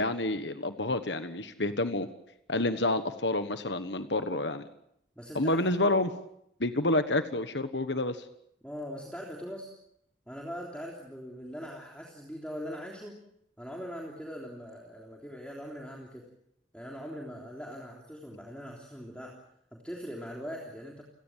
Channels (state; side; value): normal; both; correlation 0.00